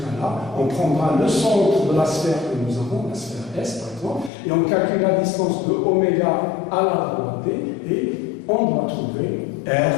on prendra le centre de la sphère que nous avons, la sphère S par exemple, et on calcule la distance de oméga à la droite D, et on doit trouver R,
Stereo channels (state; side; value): drops out; right; at 4.3 s